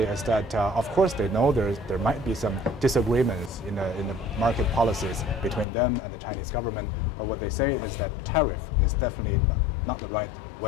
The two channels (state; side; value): drops out; right; at 5.7 s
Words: that, of course, they know there might be some disagreements in the market policies between them and the Chinese government. But what they say is that tariff is definitely not the right